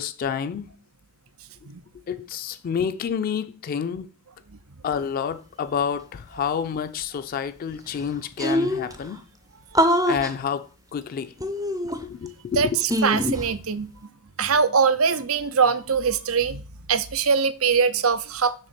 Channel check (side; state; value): both; normal; correlation -0.09